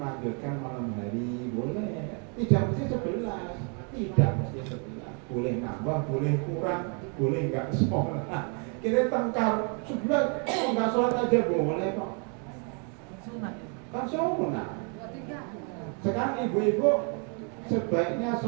malam hari, boleh. Tidak mesti 11, tidak mesti 11. Boleh nambah, boleh kurang, boleh enggak sholat. Kita tengkar 11, enggak sholat aja boleh kok. Kan sunnah. Sekarang ibu-ibu sebaiknya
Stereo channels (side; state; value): left; quieter; 38.7 dB